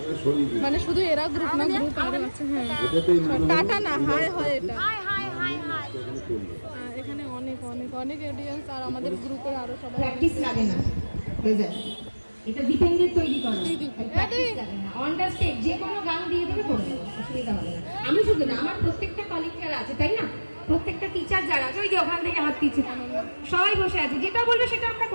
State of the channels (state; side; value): inverted; both; correlation -1.00